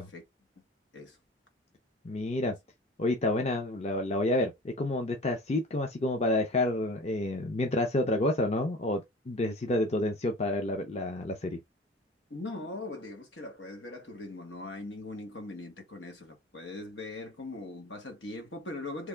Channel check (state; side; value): normal; both; correlation 0.40